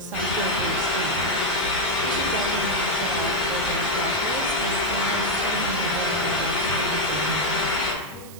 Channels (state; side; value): noise; right; hiss, 18 dB below the sound